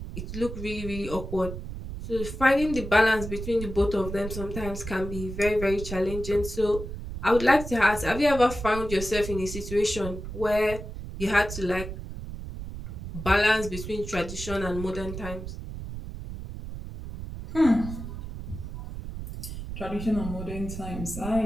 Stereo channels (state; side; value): noise; right; rumble, 8 dB below the sound